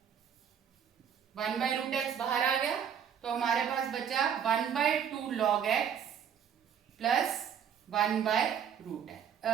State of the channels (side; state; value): left; quieter; 8.3 dB